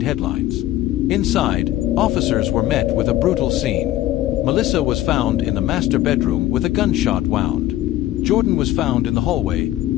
headlines. Inside, officers were met with a brutal scene. Melissa was found in the master bedroom with a gunshot wound. Jordan was found in the hallway,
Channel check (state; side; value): quieter; right; 14.5 dB